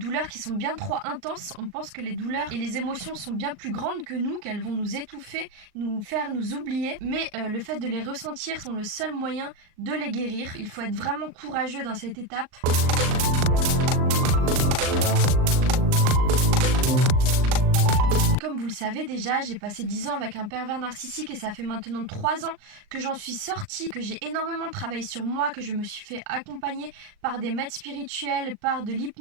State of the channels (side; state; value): left; late; 38 ms